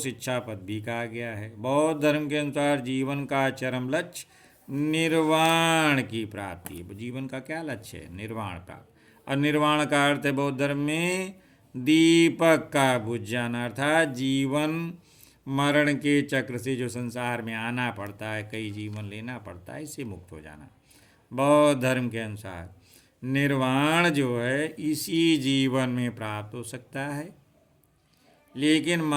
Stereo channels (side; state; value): both; identical; correlation 1.00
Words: पद भी कहा गया है। बौद्ध धर्म के अनुसार जीवन का चरम लक्ष्य निर्वाण की प्राप्ति है। जीवन का क्या लक्ष्य है? निर्वाण प्राप्त। और निर्वाण का अर्थ है बौद्ध धर्म में दीपक का बुझ जाना, अर्थात जीवन मरण के चक्र से जो संसार में आना पड़ता है, कई जीवन लेना पड़ता है, इससे मुक्त हो जाना। बौद्ध धर्म के अनुसार निर्वाण जो है इसी जीवन में प्राप्त हो सकता है, लेकिन